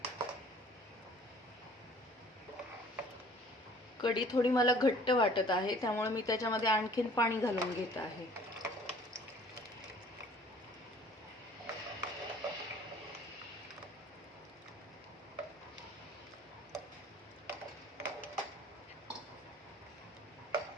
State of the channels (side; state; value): both; normal; correlation 0.52